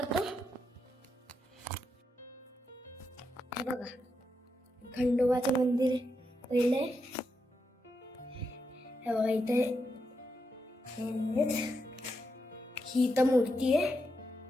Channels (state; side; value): normal; both; correlation 0.84